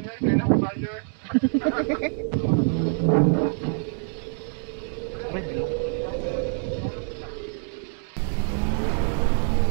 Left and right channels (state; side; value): silent; left; 61 dB below the other